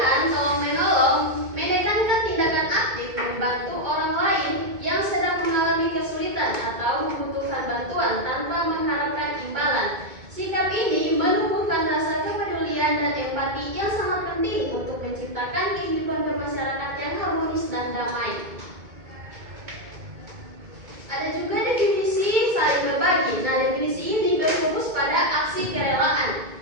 tolong menolong menekankan tindakan aktif membantu orang lain yang sedang mengalami kesulitan atau membutuhkan bantuan tanpa mengharapkan imbalan. Sikap ini menumbuhkan rasa kepedulian dan empati yang sangat penting untuk menciptakan kehidupan bermasyarakat yang harmonis dan damai. Ada juga definisi saling berbagi. Nah, definisi ini berfokus pada aksi kerelaan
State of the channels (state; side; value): late; left; 2.2 ms